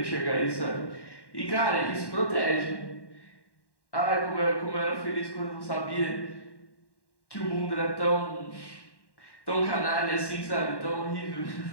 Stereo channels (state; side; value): late; right; 1.1 ms